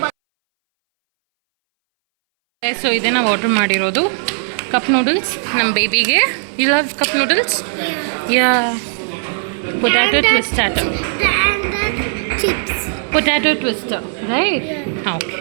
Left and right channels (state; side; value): silent; left; 63 dB below the other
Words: ಸೊ ಇದೇ ನಾವು ಆರ್ಡ್ರ್ ಮಾಡಿರೋದು ಕಪ್ ನೂಡಲ್ಸ್ ನಮ್ಮ ಬೇಬಿಗೆ. You love cup noodles? Yeah. Potato And twistato. And the chips. Potato twister, right? Yeah.